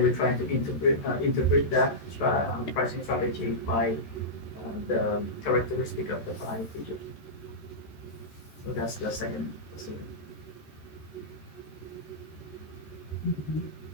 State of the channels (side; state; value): right; late; 14 ms